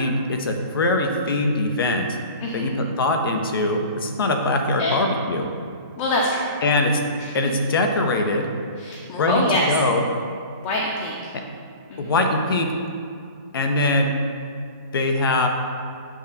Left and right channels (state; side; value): inverted; both; correlation -0.36